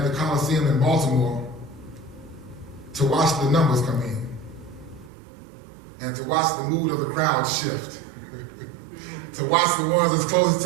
the Coliseum in Baltimore, to watch the numbers come in and to watch the mood of the crowd shift, to watch the ones that's closest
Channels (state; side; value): drops out; left; at 5.1 s